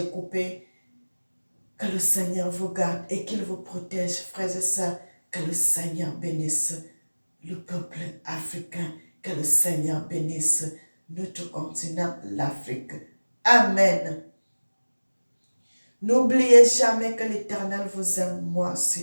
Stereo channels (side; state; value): both; inverted; correlation -1.00